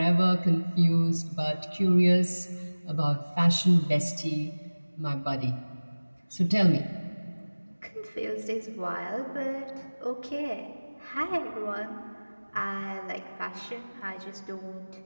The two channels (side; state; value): both; inverted; correlation -1.00